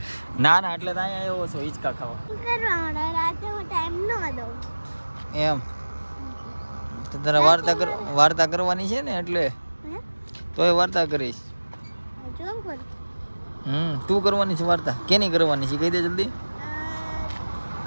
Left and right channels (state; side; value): inverted; both; correlation -1.00